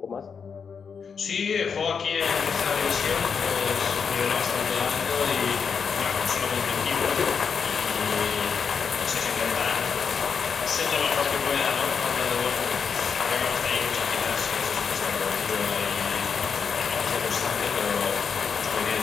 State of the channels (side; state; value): right; quieter; 6.2 dB